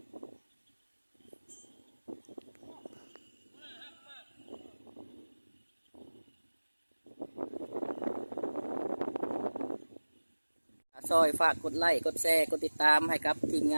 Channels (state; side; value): inverted; both; correlation -1.00